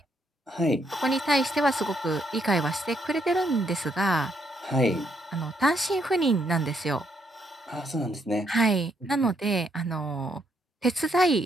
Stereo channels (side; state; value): both; normal; correlation 0.74